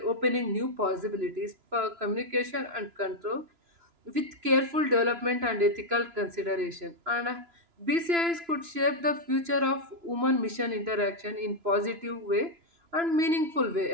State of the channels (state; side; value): late; left; 2.9 ms